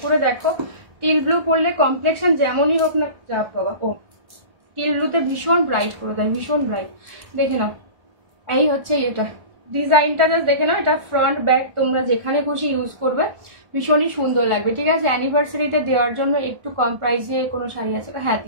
করে দেখো। টিল ব্লু পরলে কমপ্লেক্সন যেমনই হোক না, যা বাবা, ও টিল ব্লুতে ভীষণ ব্রাইট করে দেয়, ভীষণ ব্রাইট। দেখে নাও, এই হচ্ছে এটা ডিজাইনটা, জাস্ট দেখে নাও। এটা ফ্রন্ট ব্যাক তোমরা যেখানে খুশি ইউজ করবে, ভীষণই সুন্দর লাগবে, ঠিক আছে? অ্যানিভার্সারিতে দেওয়ার জন্য একটু কম প্রাইসে কোনো শাড়ি আছে? হ্যাঁ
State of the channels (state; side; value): late; left; 1.4 ms